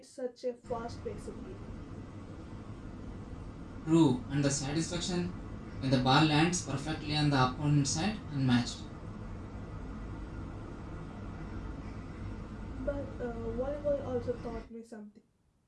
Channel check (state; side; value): identical; both; correlation 1.00